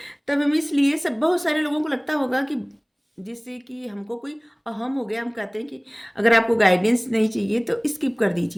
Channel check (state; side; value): identical; both; correlation 1.00